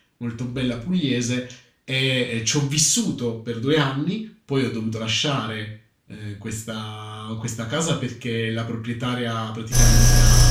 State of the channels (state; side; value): identical; both; correlation 1.00